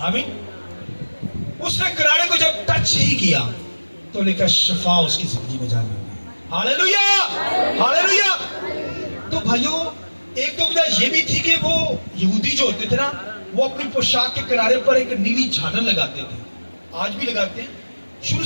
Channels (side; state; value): both; inverted; correlation -1.00